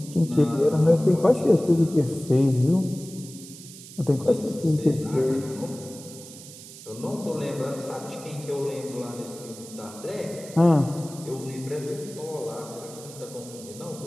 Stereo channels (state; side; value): noise; right; hiss, 16 dB below the sound